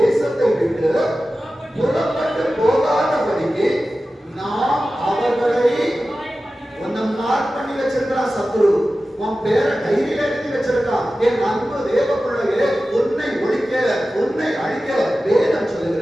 விட்டு புறப்பட்டு போகாதபடிக்கு நாம் அவர்களை மார்க் பண்ணி வச்சிருக்கிறான் சத்துரு. உன் பேரை டைரியில எழுதி வச்சிருக்கான். என் அன்பு தேவ பிள்ளையே, உன்னை ஒழிக்க, உன்னை அழிக்க வேதம்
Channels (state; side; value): normal; both; correlation 0.95